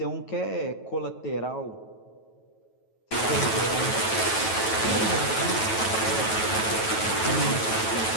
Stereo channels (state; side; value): late; right; 9.2 ms